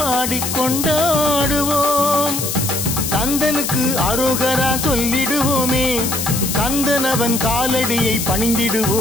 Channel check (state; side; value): noise; left; hiss, 3 dB below the sound